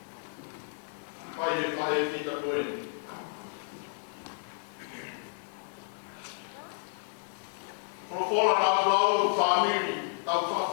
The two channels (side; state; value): right; silent; digital silence